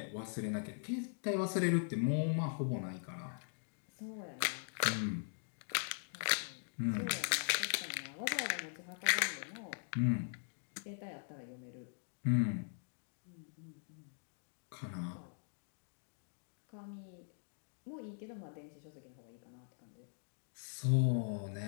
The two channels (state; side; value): silent; right; digital silence